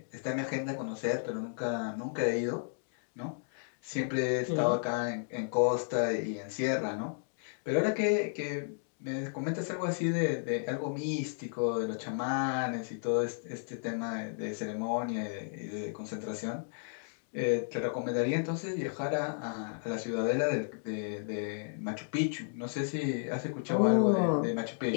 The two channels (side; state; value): right; silent; digital silence